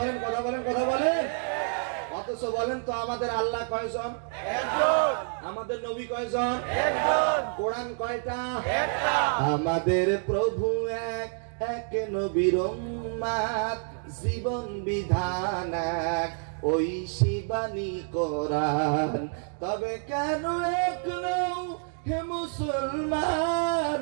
কথা বলেন, কথা বলেন। অথচ বলেন তো আমাদের আল্লাহ কয়জন? একজন। আমাদের নবী কয়জন? একজন। কোরআন কয়টা? একটা। আমাদের প্রভু এক, এক নবীর উম্মত, জীবন বিধান এক, ওই শিবানী কোরআন। তবে কেন এক নও হে মুসলমান,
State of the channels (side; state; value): left; silent; 59 dB below the other